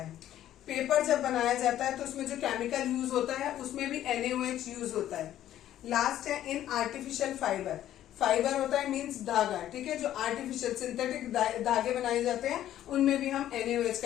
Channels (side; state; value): right; quieter; 12.2 dB